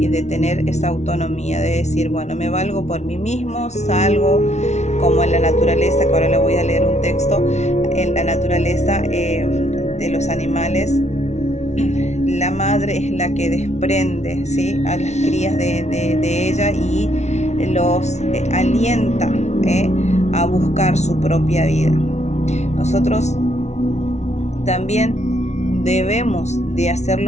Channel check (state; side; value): late; right; 0.32 ms